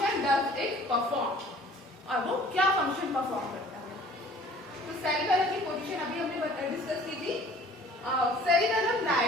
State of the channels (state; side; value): normal; both; correlation 0.51